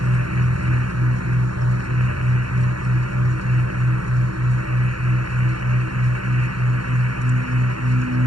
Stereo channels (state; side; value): late; left; 0.72 ms